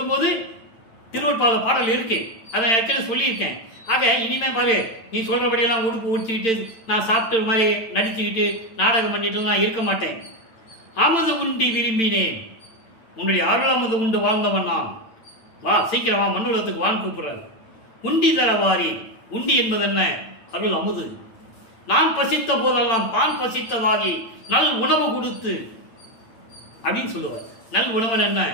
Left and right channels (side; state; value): right; late; 8.9 ms